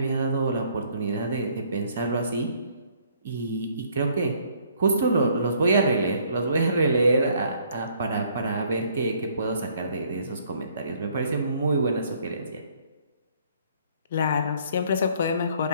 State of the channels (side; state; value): both; inverted; correlation -0.63